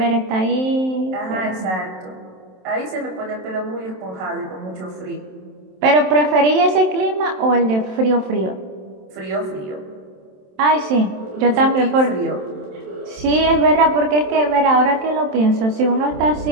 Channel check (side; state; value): left; late; 27 ms